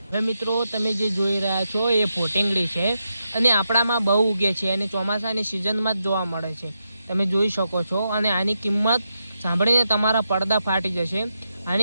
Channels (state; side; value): inverted; both; correlation -0.86